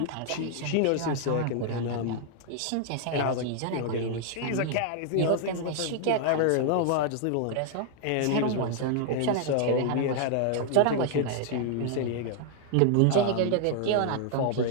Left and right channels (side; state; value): both; different; correlation 0.00